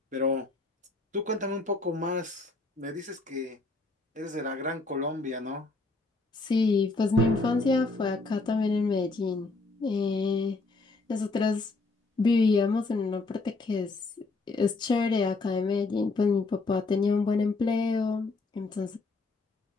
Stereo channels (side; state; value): right; quieter; 3.5 dB